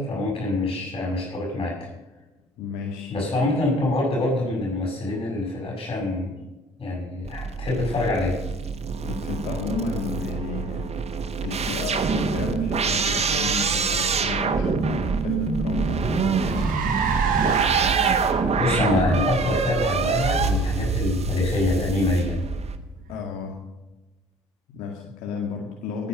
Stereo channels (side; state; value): both; normal; correlation 0.48